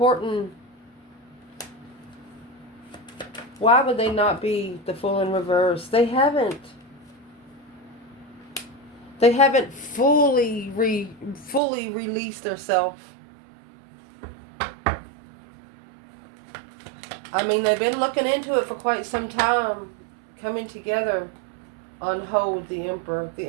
Why would they not be the Fool in reverse? They haven't fully released themselves. I mean, they've been looking into it for quite some time, coming together on hold. The Emperor. The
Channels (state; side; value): drops out; left; at 11.6 s